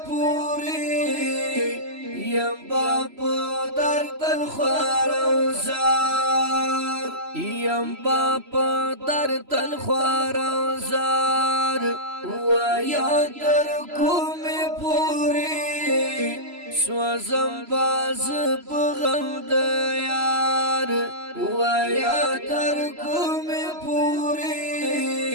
پوری یم باپا در تل خوارم زار یم باپا در تل خوارم زار و یا در کومی پوری سوزم باز بغم دیار و یا در کومی پوری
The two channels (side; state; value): left; late; 3.0 ms